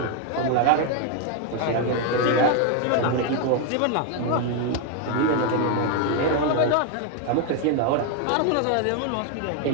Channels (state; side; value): different; both; correlation 0.01